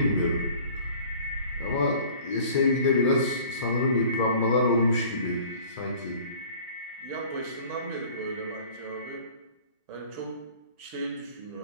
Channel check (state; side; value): inverted; both; correlation -0.48